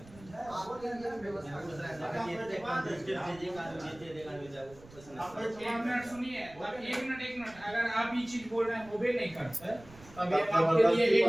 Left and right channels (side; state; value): right; noise; rumble, 21 dB below the sound